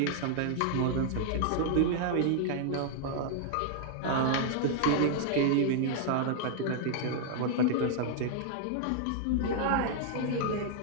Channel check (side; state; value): both; different; correlation -0.01